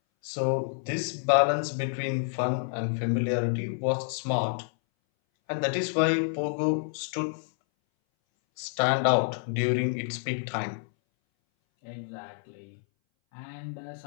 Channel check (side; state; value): right; silent; 59 dB below the other